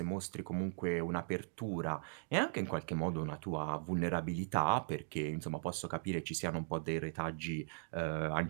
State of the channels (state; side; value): silent; left; digital silence